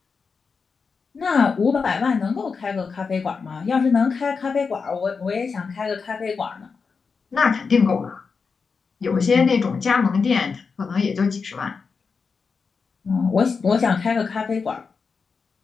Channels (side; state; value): right; quieter; 5.2 dB